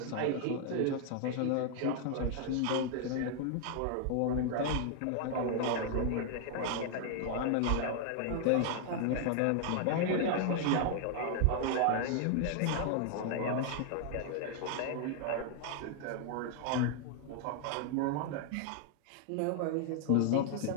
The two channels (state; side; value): different; both; correlation 0.00